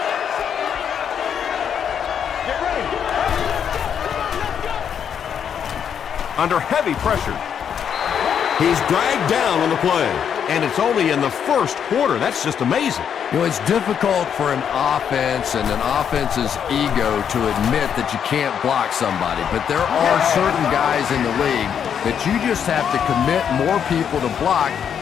Under heavy pressure. He's dragged down on the play, and it's only in the first quarter. That's just amazing. You know, it's difficult for an offense and an offense's ego to admit that you can't block somebody, but there are certain guys in the league that you just have to commit more people to block,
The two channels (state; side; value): quieter; right; 8.1 dB